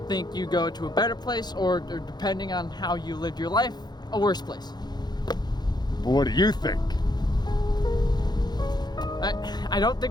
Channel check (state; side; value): late; right; 0.20 ms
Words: think you go to a better place, or depending on how you lived your life, a worse place. But what do you think? I don't